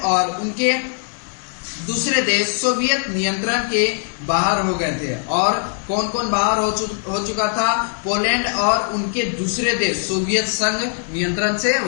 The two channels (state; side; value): silent; right; 62 dB below the other